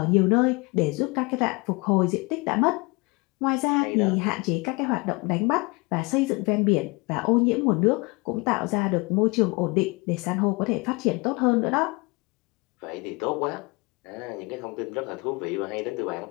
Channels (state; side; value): quieter; right; 27.1 dB